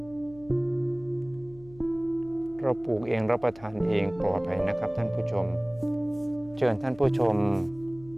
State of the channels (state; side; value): noise; left; hum, 21 dB below the sound